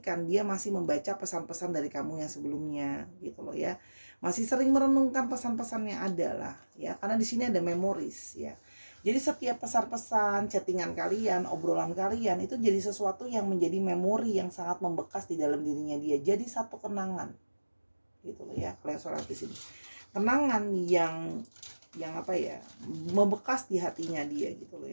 dia masih membaca pesan-pesan dari kamu yang sebelumnya gitu loh ya. Masih sering merenungkan pesan-pesan yang ada lah ya, karena di sini ada memories ya. Jadi setiap pesan-pesan, chattingan kalian, obrolan kalian itu jadi sesuatu yang menjadi memori yang sangat membekas di dalam dirinya dia. Jadi satu kenangan gitu loh ya, kalau yang sholat di sini. Kenangan yang apa ya, membekas di hatinya dia gitu loh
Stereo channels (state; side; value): inverted; both; correlation -1.00